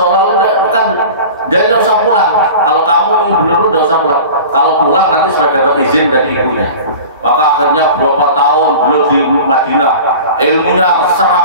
kan jadi nggak usah pulang. Kalau kamu benar nggak usah pulang. Kalau pulang nanti sudah dapat izin dari ibunya. Maka akhirnya berapa tahun beliau di Madinah, ilmunya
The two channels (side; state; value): both; inverted; correlation -0.37